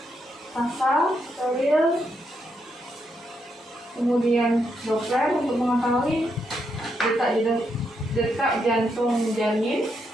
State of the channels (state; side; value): normal; both; correlation 0.80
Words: pasal, steril, kemudian Doppler untuk mengetahui detak jantung janin,